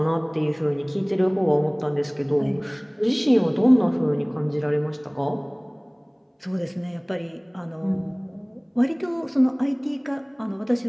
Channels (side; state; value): both; identical; correlation 1.00